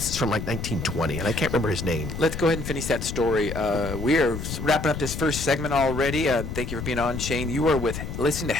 from like 1920, and I can't remember his name. Let's go ahead and finish that story. We are wrapping up this first segment already. Thank you for being on, Shane. You are listening to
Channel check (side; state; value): left; noise; rumble, 6 dB below the sound